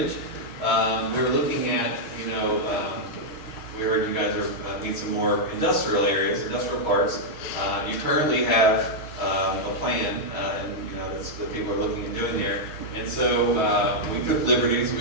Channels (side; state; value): right; late; 6.3 ms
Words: We were looking at, we heard you guys need some more industrial areas, industrial parks. You currently have a plan, and that's what people are looking at doing there. And so we took liberties.